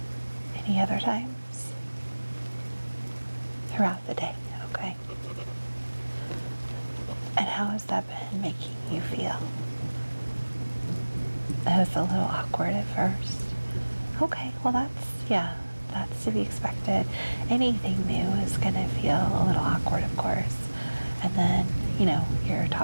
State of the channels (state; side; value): inverted; both; correlation -1.00